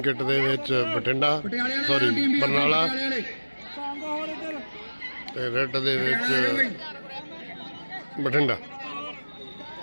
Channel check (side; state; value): both; inverted; correlation -1.00